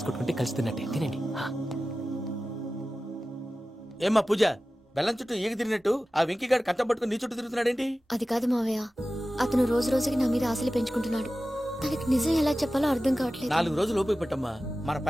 కొట్టుకుంటే కలిసి తిన్నట్టే. తినండి. ఏమ్మా పూజ, బెల్లం చుట్టూ ఈగ తిరిగినట్టు ఆ వెంకీగాడు కట్టం పట్టుకుని నీ చుట్టూ తిరుగుతున్నాడేంటి? అది కాదు మావయ్య, అతను రోజు రోజుకి నా మీద ఆశలు పెంచుకుంటున్నాడు. తనకి నిజం ఎలా చెప్పాలో అర్థం కావట్లేదు. 4 రోజులు ఓపిక పట్టమ్మా, మన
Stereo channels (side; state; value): both; normal; correlation 0.95